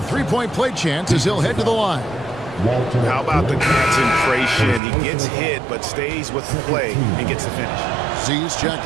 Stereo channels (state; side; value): drops out; left; at 4.8 s